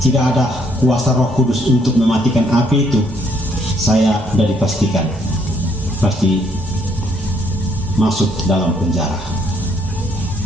tidak ada kuasa Roh Kudus untuk mematikan api itu, saya sudah dipastikan pasti masuk dalam penjara.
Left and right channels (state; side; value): normal; both; correlation 0.69